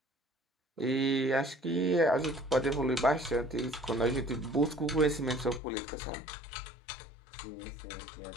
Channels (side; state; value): right; drops out; at 5.6 s